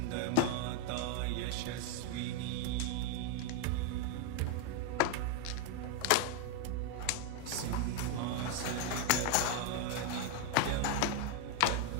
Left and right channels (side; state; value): both; different; correlation 0.01